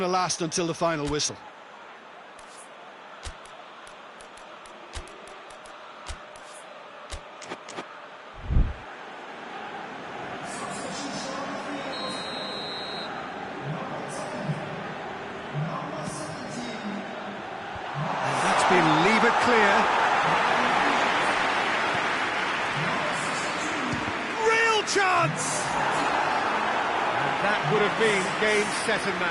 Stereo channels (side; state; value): both; identical; correlation 1.00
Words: to last until the final whistle. And that's been levered clear. Chance! And that would have been game, set and